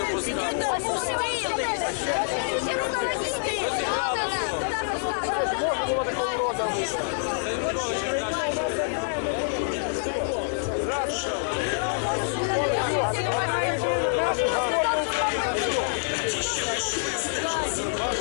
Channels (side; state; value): right; silent; digital silence